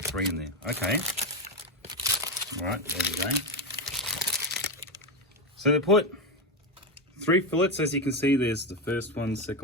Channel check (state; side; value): normal; both; correlation 0.12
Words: 3 in there. Okay. All right, there we go. So they put 3 fillets, as you can see. There's the first one,